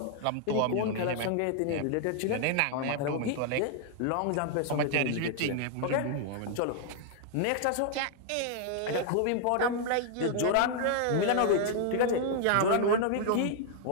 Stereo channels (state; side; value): different; both; correlation 0.00